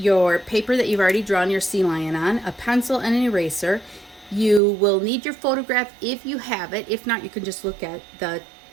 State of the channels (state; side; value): drops out; left; at 4.6 s